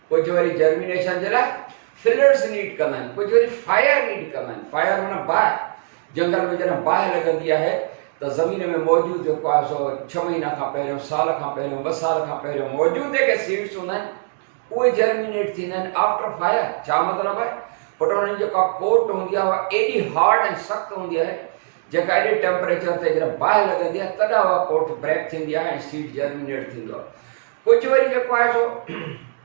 कुझु वरी जर्मिनेशन जे लाइ फिलर्स नीड कंदा आहिनि, कुझु वरी फायर नीड कंदा आहिनि। फायर माना बाहि, जंगल में जॾहिं बाहि लॻंदी आहे त ज़मीन में मौजूदु जेको आहे सो 6 महीना खां पहिरियों, साल खां पहिरियों, 2 साल खां पहिरियों मौजूदु जेके सीड्स हूंदा आहिनि उहे जर्मिनेट थींदा आहिनि आफ्टर फायर। छा मतिलबु आहे? पुट हुनजी जेका कोट हूंदी आहे उहा एॾी हार्ड ऐं सख़्तु हूंदी आहे, जेका एॾे टेम्परेचर ते जॾहिं बाहि लॻंदी आहे तॾहिं उहा कोट ब्रेक थींदी आहे ऐं सीड जर्मिनेट थींदो आहे। कुझु वरी जेको आहे सो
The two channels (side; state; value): left; silent; digital silence